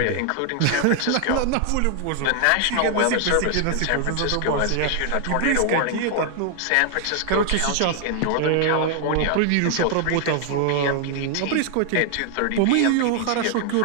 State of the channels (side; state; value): both; different; correlation 0.00